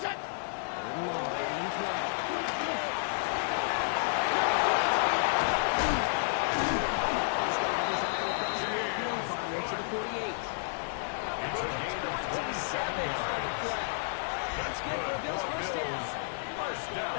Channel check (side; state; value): right; silent; digital silence